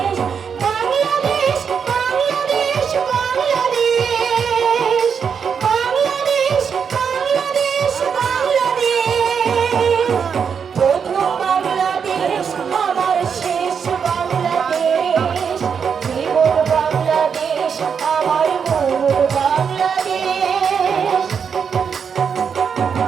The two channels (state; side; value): quieter; left; 6.7 dB